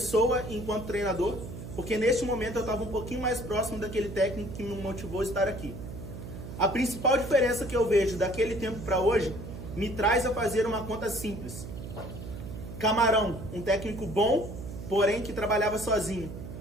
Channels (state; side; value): noise; right; hum, 10 dB below the sound